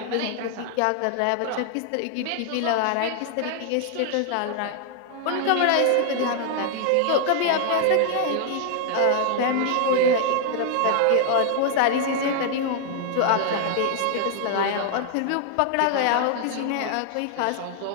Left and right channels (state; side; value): different; both; correlation 0.00